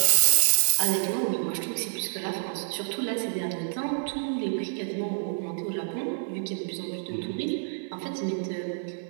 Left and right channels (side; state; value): left; silent; digital silence